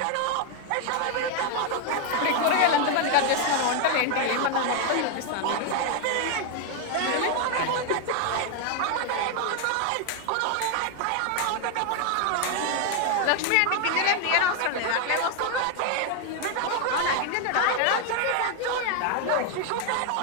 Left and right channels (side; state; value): both; different; correlation 0.01